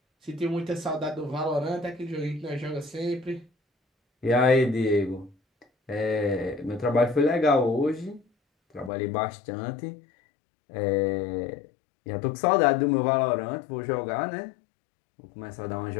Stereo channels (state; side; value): drops out; right; at 8.9 s